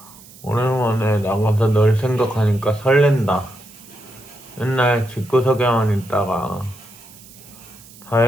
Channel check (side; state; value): right; noise; hiss, 21 dB below the sound